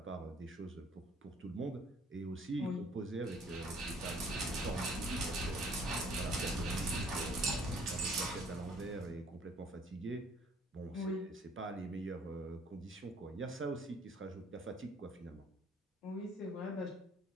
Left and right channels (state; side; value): normal; both; correlation 0.59